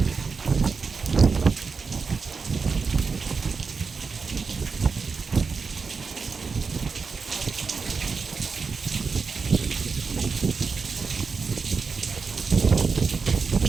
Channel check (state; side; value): quieter; left; 5.0 dB